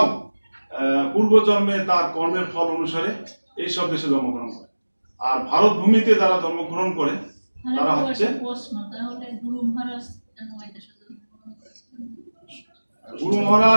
পূর্বজন্মে তার কর্মের ফল অনুসারে এই সব দেশে জন্মগ্রহণ করে। আর ভারত ভূমিতে যারা জন্মগ্রহণ করে তারা হচ্ছে গুরু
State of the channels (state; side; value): inverted; both; correlation -1.00